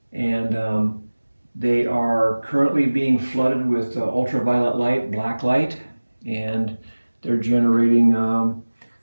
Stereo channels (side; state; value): both; inverted; correlation -1.00